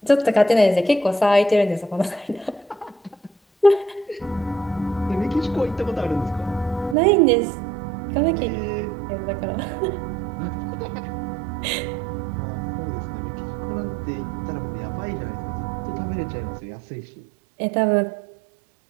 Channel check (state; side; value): drops out; left; at 7.0 s